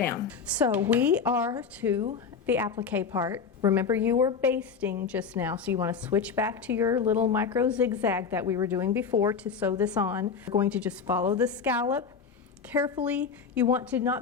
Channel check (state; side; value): quieter; right; 5.9 dB